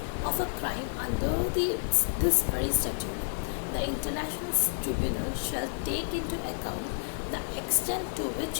of a crime under this very statute, the international tribunal shall take into account the extent to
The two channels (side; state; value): right; silent; digital silence